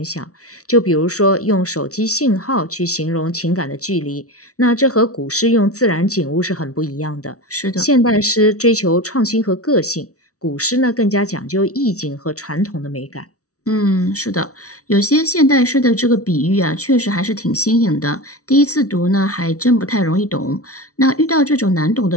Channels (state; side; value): late; right; 0.66 ms